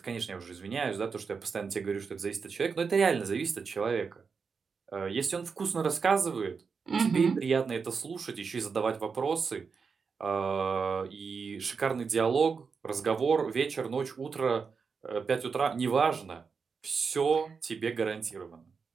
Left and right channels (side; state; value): left; quieter; 5.4 dB